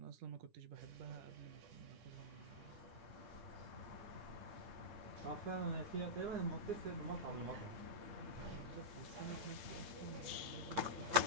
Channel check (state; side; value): late; left; 8.9 ms